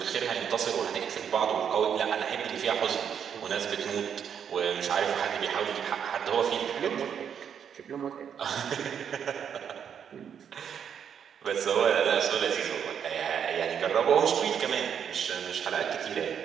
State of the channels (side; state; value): left; quieter; 8.0 dB